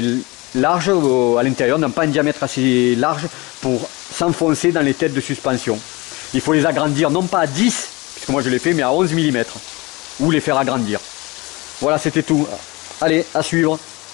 larges à l'intérieur, n'ont pas un diamètre assez large pour s'enfoncer dans les têtes de suspension. Il faut les agrandir non pas à 10, puisque moi je l'ai fait, mais à 11 mm, ou les faire agrandir. Voilà, c'était tout. Allez, à suivre.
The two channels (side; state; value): right; quieter; 24.1 dB